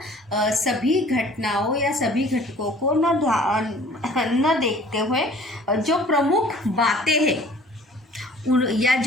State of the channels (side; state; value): both; normal; correlation 0.50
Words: सभी घटनाओं या सभी घटकों को न देखते हुए जो प्रमुख बातें हैं या